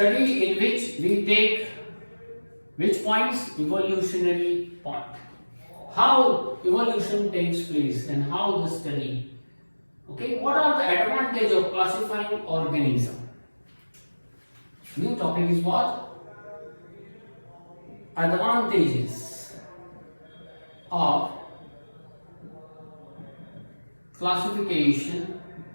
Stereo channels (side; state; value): both; inverted; correlation -1.00